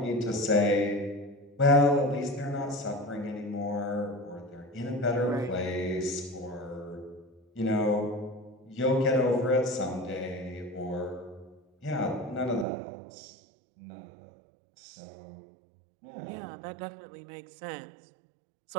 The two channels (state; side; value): drops out; left; at 12.7 s